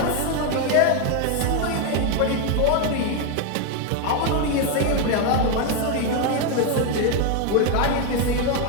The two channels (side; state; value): both; different; correlation 0.01